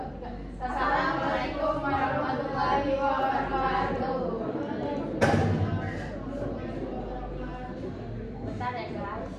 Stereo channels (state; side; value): identical; both; correlation 1.00